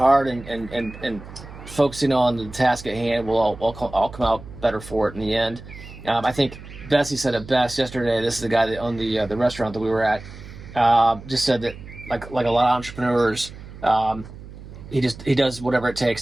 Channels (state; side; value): noise; right; hum, 15 dB below the sound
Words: and focusing on the task at hand. We'll all come out better for it in the end. I think Bessie said it best yesterday. This is the guy that owned the restaurant that we were at. Just said that like a lot of entrepreneurs, he does whatever it